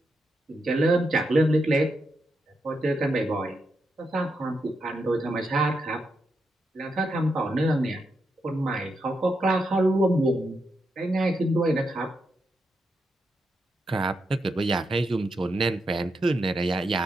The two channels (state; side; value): normal; both; correlation 0.84